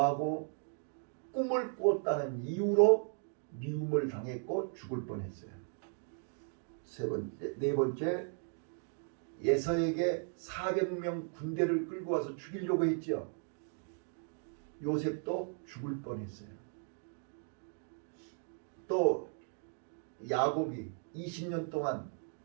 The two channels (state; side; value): silent; left; 53 dB below the other